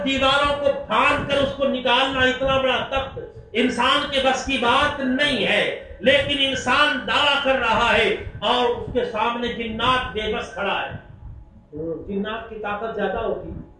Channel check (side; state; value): both; identical; correlation 1.00